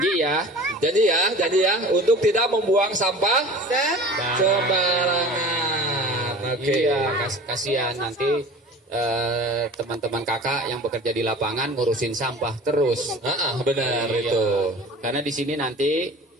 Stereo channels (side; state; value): both; normal; correlation 0.41